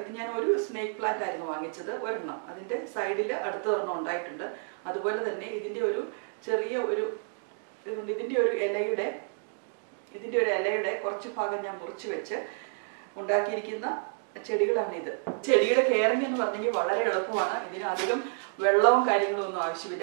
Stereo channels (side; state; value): left; silent; 58 dB below the other